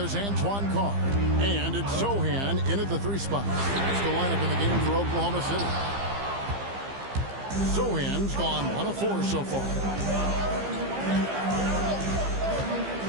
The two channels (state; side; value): late; left; 15 ms